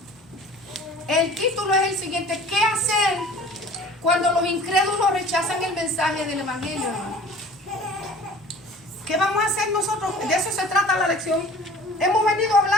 El título es el siguiente: ¿qué hacer cuando los incrédulos rechazan el mensaje del evangelio, hermano? ¿Qué vamos a hacer nosotros? De eso se trata la lección. Hemos venido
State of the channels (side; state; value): both; normal; correlation 0.45